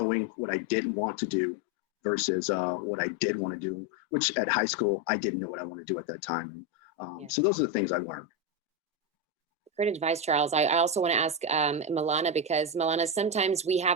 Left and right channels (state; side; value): normal; both; correlation 0.10